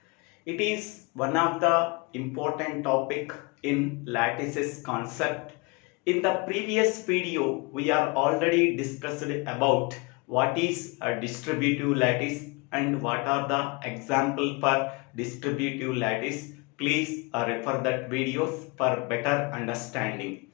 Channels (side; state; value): right; quieter; 28.1 dB